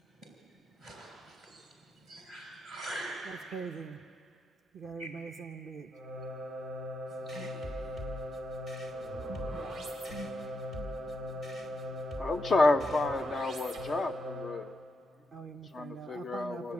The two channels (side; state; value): both; normal; correlation 0.84